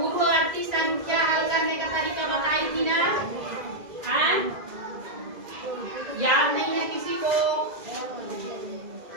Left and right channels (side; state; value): left; late; 2.0 ms